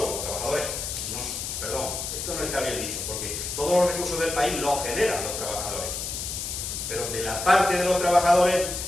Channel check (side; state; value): left; noise; hiss, 4 dB below the sound